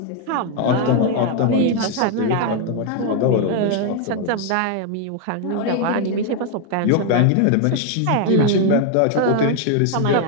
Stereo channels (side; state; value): both; different; correlation 0.01